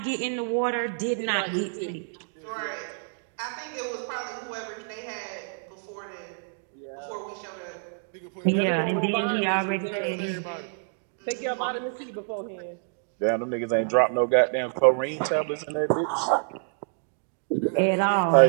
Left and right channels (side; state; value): left; silent; digital silence